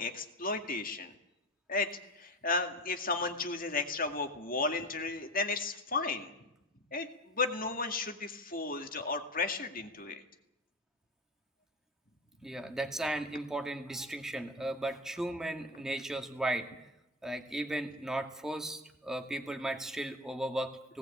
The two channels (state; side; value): normal; both; correlation 0.25